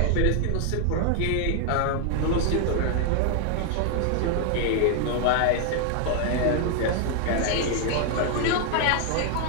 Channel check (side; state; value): both; different; correlation 0.00